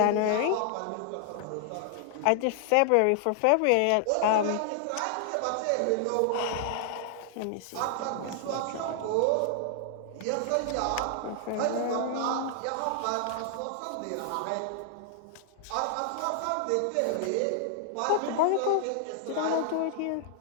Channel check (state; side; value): different; both; correlation 0.00